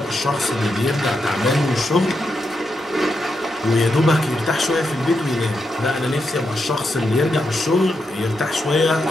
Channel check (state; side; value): normal; both; correlation 0.84